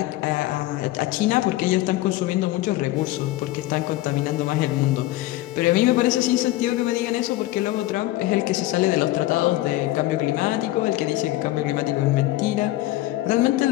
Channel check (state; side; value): quieter; right; 16.5 dB